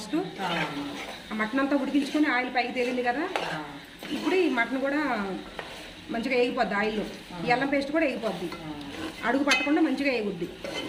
ఆ మటన్ అంతా ఉడికించుకొని ఆయిల్ పైకి తేలింది కదా, ఇప్పుడు ఈ మటన్ కూడా మంచిగా వేగిపోద్ది ఆయిల్లో. ఈ అల్లం పేస్ట్ కూడా వేగిపోద్ది, అడుగు పట్టకుండా మంచిగా వేగుద్ది.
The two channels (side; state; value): both; identical; correlation 1.00